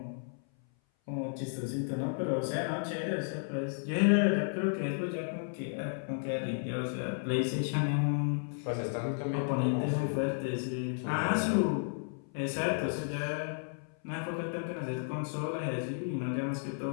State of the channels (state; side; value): silent; right; 56 dB below the other